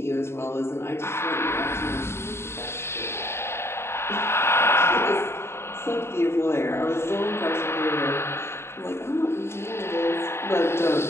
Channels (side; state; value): right; late; 0.12 ms